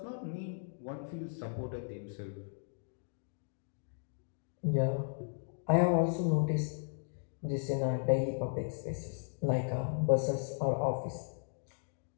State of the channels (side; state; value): right; silent; digital silence